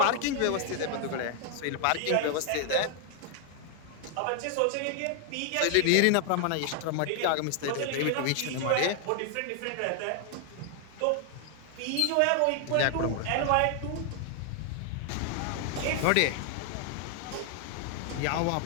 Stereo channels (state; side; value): different; both; correlation 0.00